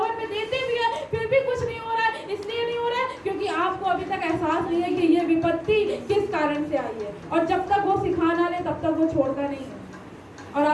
में देते भी है, फिर भी कुछ नहीं हो रहा है। इसलिए नहीं हो रहा है क्योंकि आपको अभी तक एहसास नहीं है कि ये विपत्ति किस कारण से आई है। और जब तक वो सिखाना ले तब तक वो छोड़ता नहीं है। और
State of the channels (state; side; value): identical; both; correlation 1.00